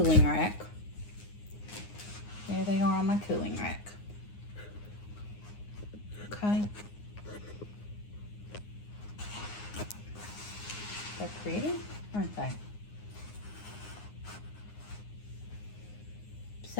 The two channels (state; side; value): late; right; 9.6 ms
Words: rack. There they are on my cooling rack. Okay. They're pretty, aren't they?